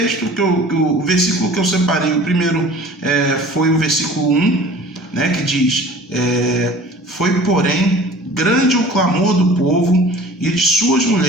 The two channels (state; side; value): normal; both; correlation 0.45